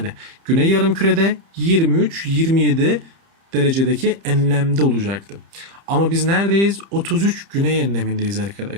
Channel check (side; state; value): left; late; 30 ms